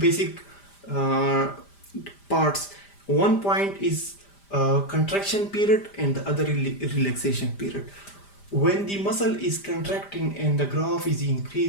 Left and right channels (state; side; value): late; right; 5.0 ms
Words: parts. One point is contraction period and the other relaxation period. When the muscle is contracting and the graph is